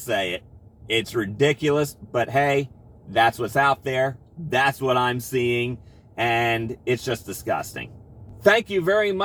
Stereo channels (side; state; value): both; identical; correlation 1.00